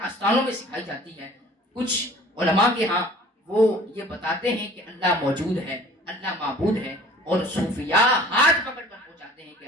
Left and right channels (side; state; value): both; normal; correlation 0.49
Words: میں سکھائی جاتی ہے. کچھ علماء کے ہاں وہ یہ بتاتے ہیں کہ اللہ موجود ہے, اللہ معبود ہے, اور صوفیاء ہاتھ پکڑ کر پہنچاتے ہیں کہ